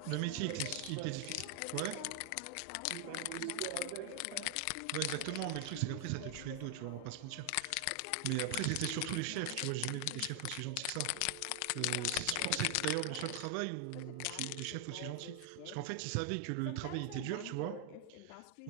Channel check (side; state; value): both; different; correlation 0.00